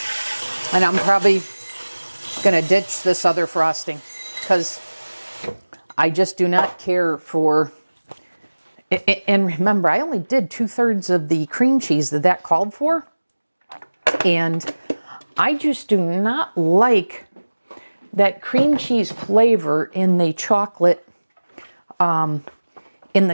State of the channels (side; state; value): both; inverted; correlation -1.00